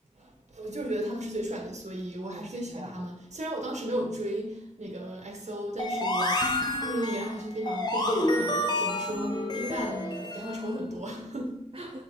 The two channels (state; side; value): normal; both; correlation 0.43